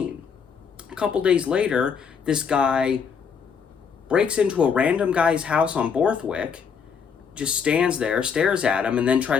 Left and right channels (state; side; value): quieter; right; 6.5 dB